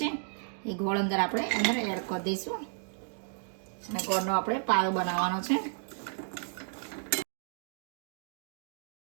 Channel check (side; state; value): left; silent; 56 dB below the other